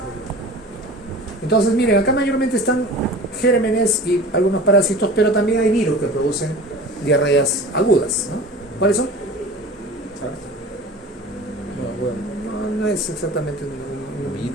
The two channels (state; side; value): normal; both; correlation 0.39